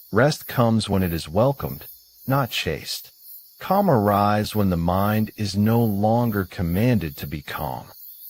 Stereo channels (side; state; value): both; identical; correlation 1.00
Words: Rest comes when it is welcomed, not chased. Calm arrives when the mind is no longer commanded to be calm.